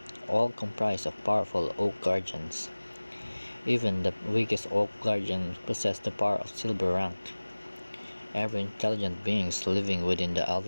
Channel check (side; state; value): both; inverted; correlation -1.00